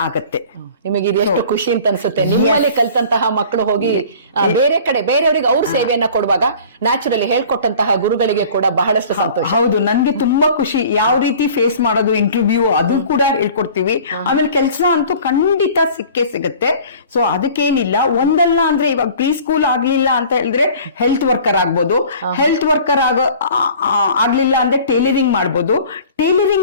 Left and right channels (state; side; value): inverted; both; correlation -0.46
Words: ಆಗತ್ತೆ. ನಿಮಗೆ ಇದು ಎಷ್ಟು ಖುಷಿ ಅಂತ ಅನ್ಸುತ್ತೆ. ನಿಮ್ಮಲ್ಲಿ ಕಲ್ತಂತಹ ಮಕ್ಕಳು ಹೋಗಿ ಬೇರೆ ಕಡೆ ಬೇರೆಯವರಿಗೆ ಅವ್ರ ಸೇವೆಯನ್ನ ಕೊಡುವಾಗ ನ್ಯಾಚುರಲಿ ಹೇಳ್ಕೊಟ್ಟಂತಹ ಗುರುಗಳಿಗೆ ಕೂಡ ಬಹಳಷ್ಟು ಸಂತೋಷ. ಹೌದು, ನನ್ಗೆ ತುಂಬಾ ಖುಷಿ. ಯಾವ ರೀತಿ ಫೇಸ್ ಮಾಡೋದು ಇಂಟರ್ವ್ಯೂ ಅದು ಕೂಡ ಹೇಳ್ಕೊಡ್ತೀವಿ. ಆಮೇಲೆ ಕೆಲಸ ಅಂತೂ ಖಂಡಿತ ಸಿಕ್ಕೇ ಸಿಗುತ್ತೆ. ಸೊ ಅದಕ್ಕೇನಿಲ್ಲ, ಒಂದಲ್ಲ ಅಂದ್ರೆ ಇವಾಗ ಪ್ರೀ ಸ್ಕೂಲ್ ಆಗ್ಲಿಲ್ಲ ಅಂತ ಹೇಳಿದ್ರೆ ಹೆಲ್ತ್ ವರ್ಕರ್ ಆಗ್ಬೋದು, ಹೆಲ್ತ್ ವರ್ಕರ್ ಆಗ್ಲಿಲ್ಲ ಅಂದ್ರೆ ಟೈಲರಿಂಗ್ ಮಾಡ್ಬೋದು,